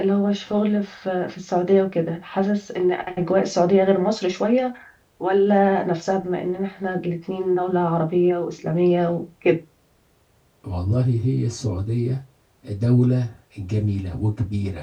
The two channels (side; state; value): both; identical; correlation 1.00